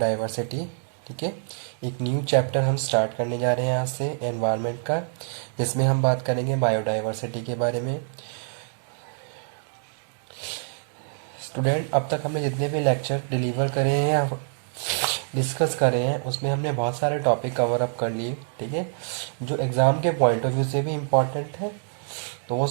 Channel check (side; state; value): left; silent; digital silence